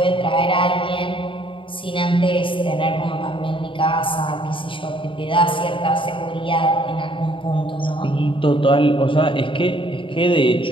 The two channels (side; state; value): right; late; 0.25 ms